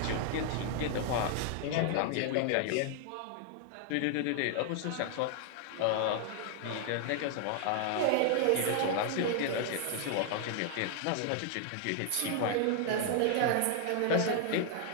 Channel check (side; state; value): both; different; correlation 0.00